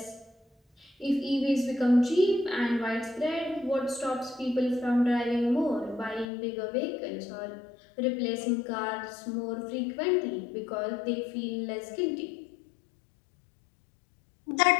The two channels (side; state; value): right; drops out; at 6.2 s